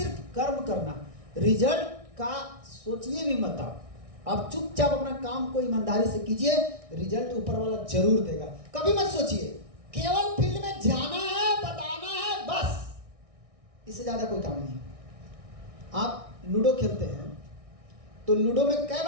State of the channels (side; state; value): left; late; 1.6 ms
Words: कर्म करना। रिजल्ट का सोचिए भी मत। आप चुपचाप अपना काम को ईमानदारी से कीजिए, रिजल्ट ऊपर वाला जरूर देगा। कभी मत सोचिए केवल फील्ड में जाना है, बताना है, बस, इससे ज्यादा कोई काम नहीं। आप लूडो खेलते हैं तो लूडो में कई